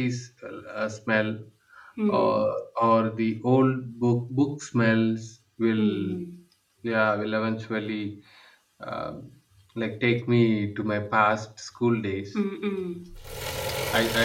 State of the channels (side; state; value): both; identical; correlation 1.00